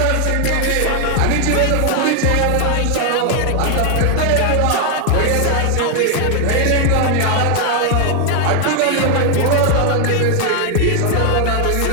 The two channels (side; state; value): both; different; correlation 0.00